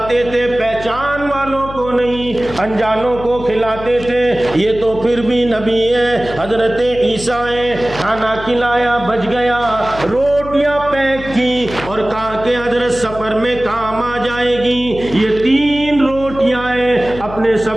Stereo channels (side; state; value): left; noise; hum, 13 dB below the sound